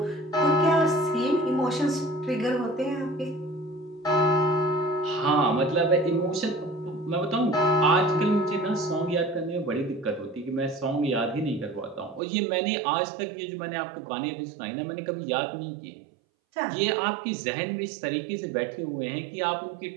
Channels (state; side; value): drops out; left; at 12.2 s